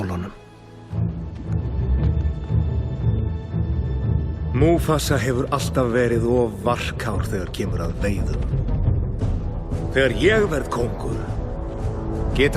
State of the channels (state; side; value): identical; both; correlation 1.00